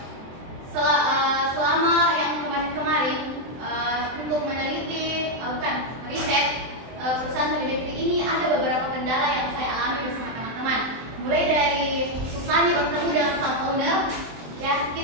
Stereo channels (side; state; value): left; late; 23 ms